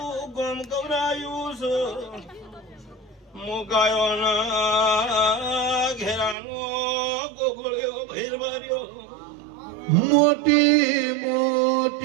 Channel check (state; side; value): drops out; left; at 6.4 s